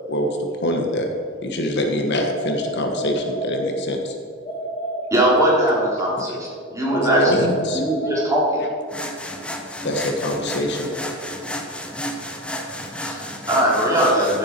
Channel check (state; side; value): normal; both; correlation 0.20